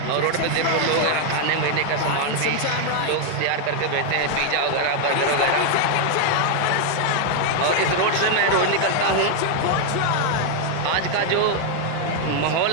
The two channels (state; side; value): different; both; correlation 0.00